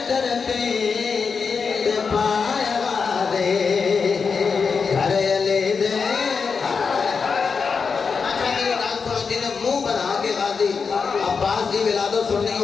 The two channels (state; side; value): quieter; right; 5.4 dB